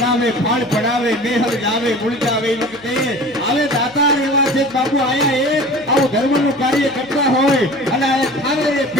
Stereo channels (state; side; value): noise; left; hum, 25 dB below the sound